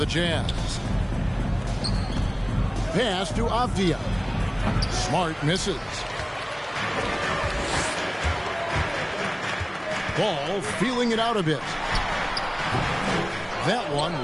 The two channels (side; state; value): both; identical; correlation 1.00